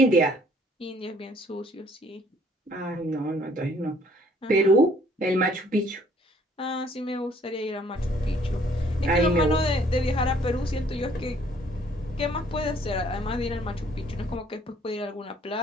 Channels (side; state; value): both; normal; correlation 0.61